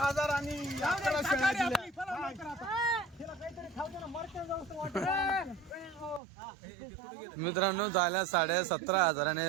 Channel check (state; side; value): drops out; left; at 6.2 s